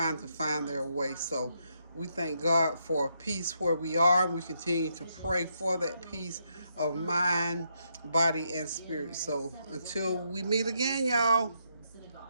to find their way. So we thank God for peace where we are. We continue to pray for that peace of mind, body, and spirit. So until we meet again, y'all,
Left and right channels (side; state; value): both; inverted; correlation -0.78